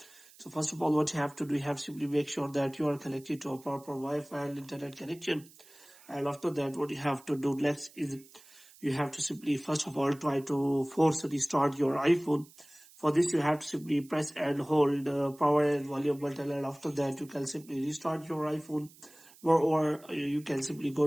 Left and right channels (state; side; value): noise; right; hiss, 24 dB below the sound